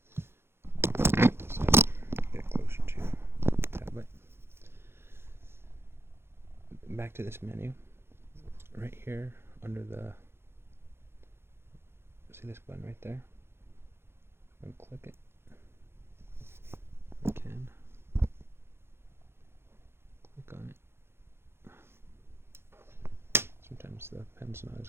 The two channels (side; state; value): left; late; 0.12 ms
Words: get closer to the tablet. Back to this menu. Right here under the, see this button right there? I'm going to click it. I can click on it. Sometimes the pen's not